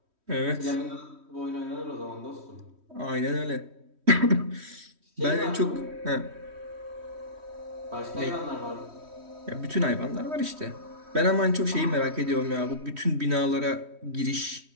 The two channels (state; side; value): late; left; 3.1 ms